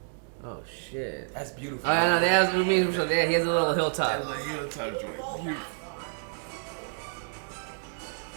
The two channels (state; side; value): silent; left; 59 dB below the other